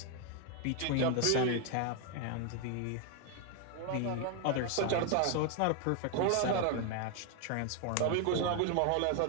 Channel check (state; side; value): different; both; correlation 0.01